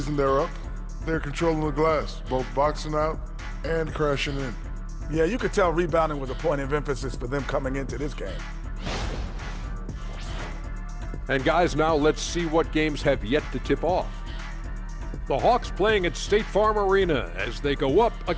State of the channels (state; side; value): identical; both; correlation 1.00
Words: they're up, they're controlling the glass, both boxing out and crashing in. Yeah, you could tell rebounding was a point of emphasis for them coming into this game. And guys, now let's see what games have yet to tip off. The Hawks playing at State Farm Arena as they go up